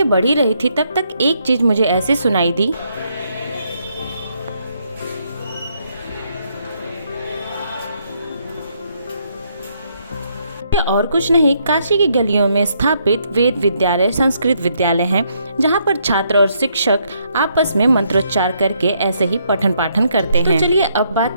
बढ़ी रही थी तब तक एक चीज मुझे ऐसे सुनाई दी। ये और कुछ नहीं, काशी की गलियों में स्थापित वेद विद्यालय संस्कृत विद्यालय हैं, जहाँ पर छात्र और शिक्षक आपस में मंत्रोच्चार करके ऐसे ही पठन पाठन करते हैं। तो चलिए अब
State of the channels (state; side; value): inverted; both; correlation -0.73